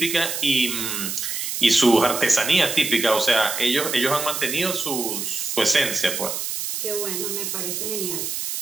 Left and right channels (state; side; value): noise; right; hiss, 4 dB below the sound